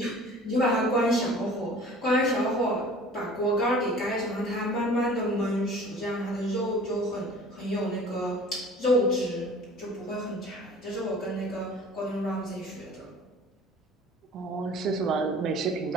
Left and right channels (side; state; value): both; normal; correlation 0.46